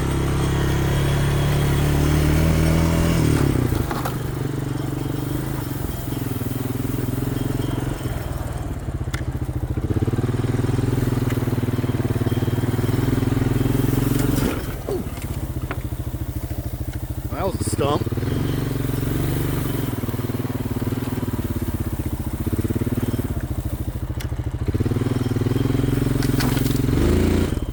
That was a stump.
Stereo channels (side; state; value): both; identical; correlation 1.00